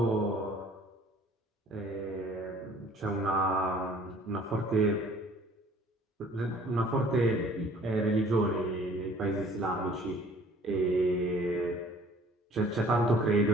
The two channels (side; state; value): both; normal; correlation 0.53